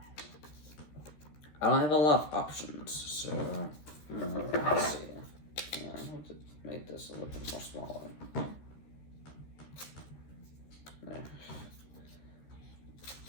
I don't have a lot of options, so let's see. Yeah, I'll just make this a little bit more smaller. There.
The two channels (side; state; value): right; late; 13 ms